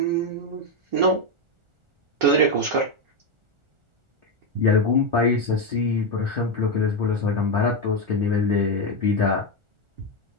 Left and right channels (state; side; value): late; left; 1.4 ms